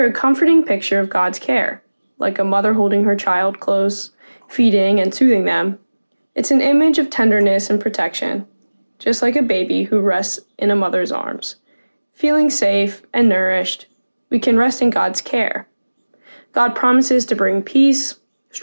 a comforting picture of God's care, like a mother holding her child close, feeding and soothing them. It's an image of tenderness and protection, just like a baby who rests in a mother's arms. Feeling safe and nourished, we can rest in God's care. God promises to bring peace,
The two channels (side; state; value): both; inverted; correlation -1.00